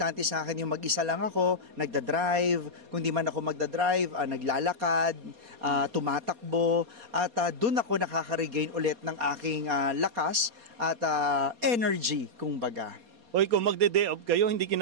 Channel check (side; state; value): left; late; 4.2 ms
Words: sa akin yung mag-isa lang ako, nagda-drive, kung di man ako magda-drive, naglalakad, tumatakbo, at doon ako nakaka-regain ulit ng aking lakas at energy, kumbaga. Hoy, kung magde-day off kayo, hindi